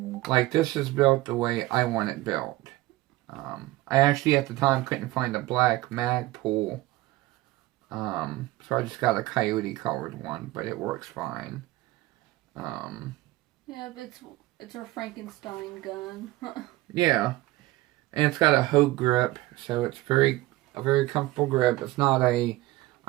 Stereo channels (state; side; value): quieter; left; 18.3 dB